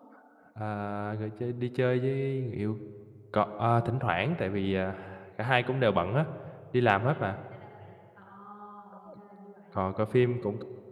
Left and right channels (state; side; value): identical; both; correlation 1.00